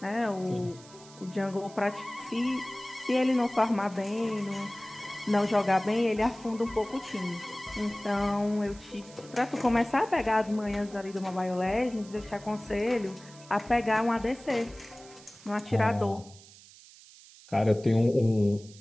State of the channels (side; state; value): right; noise; hiss, 21 dB below the sound